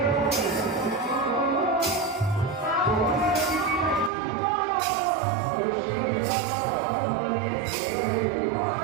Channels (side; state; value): left; drops out; at 4.1 s